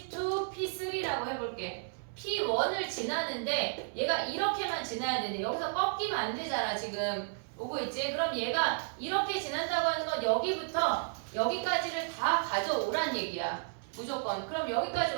P3라고 해볼게. P1을 지나는데 얘가 이렇게만 지나야 되는데 여기서 꺾이면 안 되잖아 지금. 오고 있지? 그럼 얘가 이렇게 지난다고 하는 건 여기부터 여기까지를 다 가져오란 얘기야. 무조건. 그럼 여기까지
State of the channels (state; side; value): silent; left; 56 dB below the other